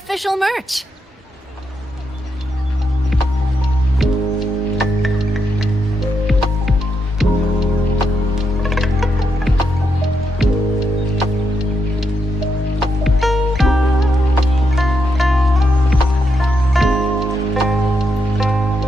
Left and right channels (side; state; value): both; normal; correlation 0.82